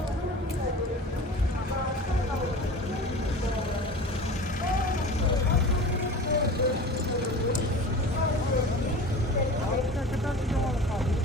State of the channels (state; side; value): normal; both; correlation 0.36